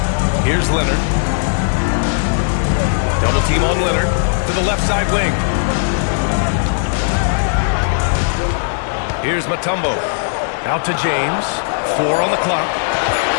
Here's Leonard. Double team on Leonard to the left side wing. Here's Mutombo. Out to James. 4 on the clock.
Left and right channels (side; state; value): right; silent; digital silence